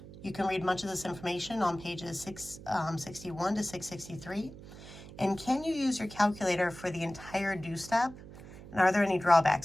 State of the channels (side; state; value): right; noise; hum, 16 dB below the sound